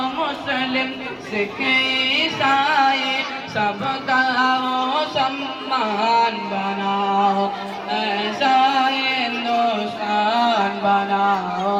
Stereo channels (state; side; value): identical; both; correlation 1.00